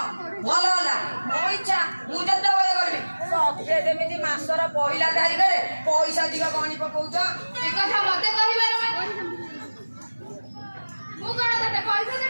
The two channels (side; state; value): both; inverted; correlation -1.00